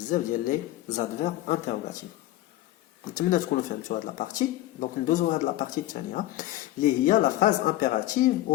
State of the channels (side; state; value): right; quieter; 15.3 dB